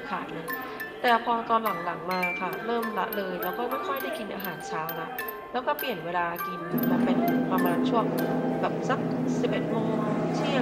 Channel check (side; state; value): both; identical; correlation 1.00